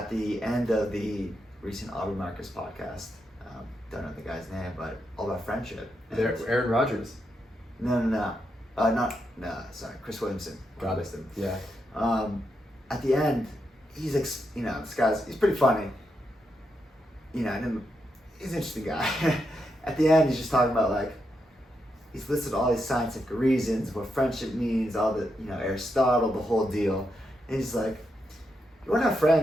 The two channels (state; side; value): normal; both; correlation 0.83